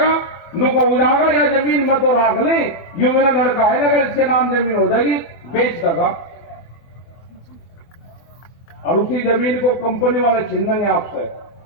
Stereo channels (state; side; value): late; right; 24 ms